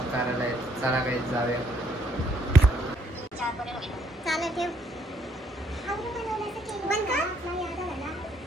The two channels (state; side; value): normal; both; correlation 0.68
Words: करायला आहेत. चला गाईस जाऊया.